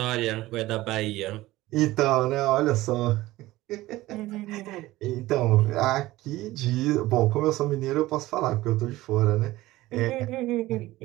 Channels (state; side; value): quieter; left; 17.5 dB